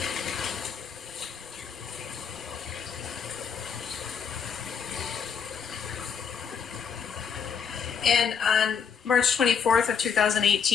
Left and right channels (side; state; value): right; quieter; 6.9 dB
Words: And on March 24th of